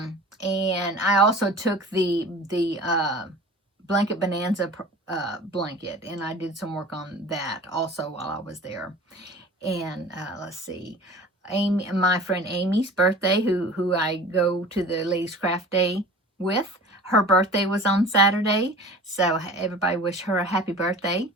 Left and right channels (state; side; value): normal; both; correlation 0.40